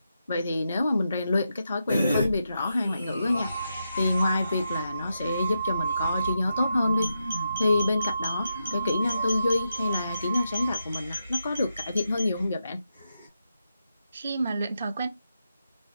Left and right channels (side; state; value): both; inverted; correlation -0.85